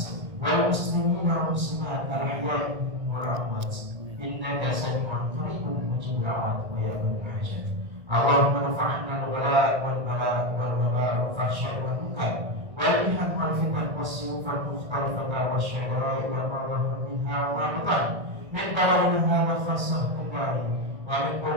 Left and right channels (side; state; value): left; late; 1.6 ms